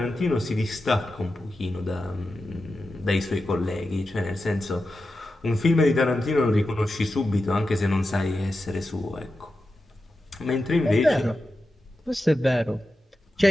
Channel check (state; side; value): normal; both; correlation 0.91